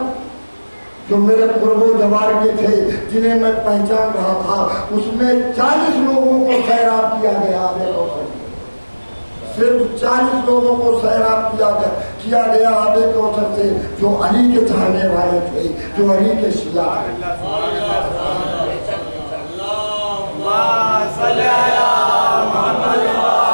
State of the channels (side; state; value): both; inverted; correlation -1.00